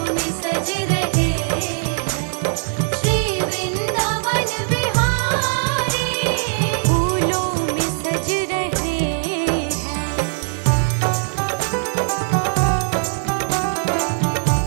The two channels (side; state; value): left; silent; 65 dB below the other